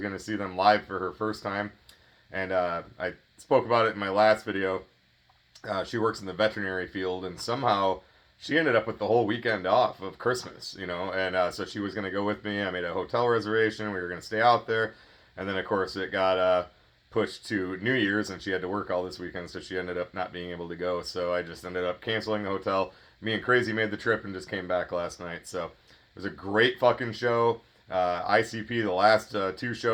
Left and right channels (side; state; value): both; identical; correlation 1.00